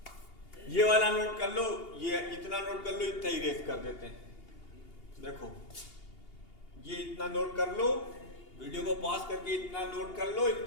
ये वाला नोट कर लो, ये इतना नोट कर लो, इतना इरेज कर देते हैं। देखो, ये इतना नोट कर लो, वीडियो को पॉज करके इतना नोट कर लो,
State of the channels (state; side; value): late; right; 2.8 ms